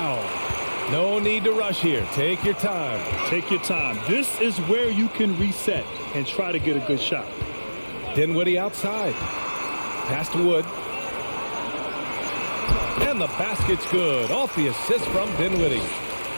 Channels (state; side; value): inverted; both; correlation -1.00